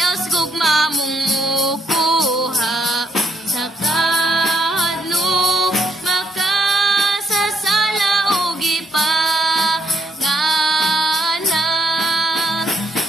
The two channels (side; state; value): both; normal; correlation 0.73